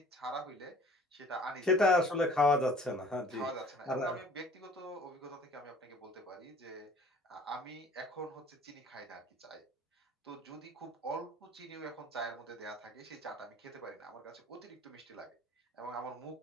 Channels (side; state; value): both; normal; correlation 0.51